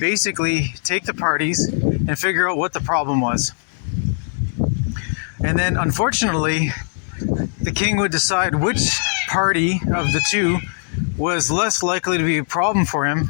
take the parties and figure out what the problem was. And then, unfortunately, the king would decide which party of the 2 was less likely to be a problem for him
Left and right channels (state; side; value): silent; right; 66 dB below the other